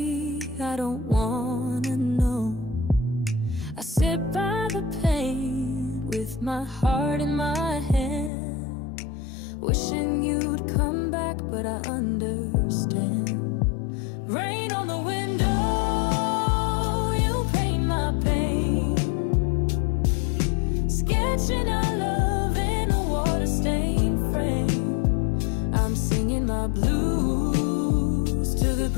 I don't wanna know. I sit by the pain with my heart in my hand, wishing you'd come back, but I understand. Rain on the window, you paint my pain, sketching our love in a water-stained frame. I'm singing my blues to the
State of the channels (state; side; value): drops out; right; at 8.3 s